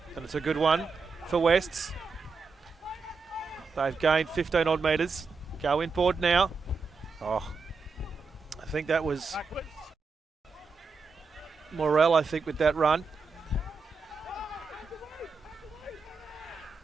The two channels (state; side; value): quieter; left; 4.6 dB